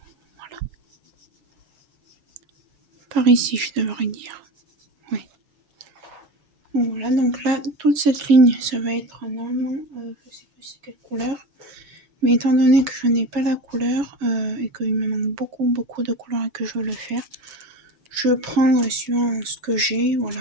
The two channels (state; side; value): late; left; 7.2 ms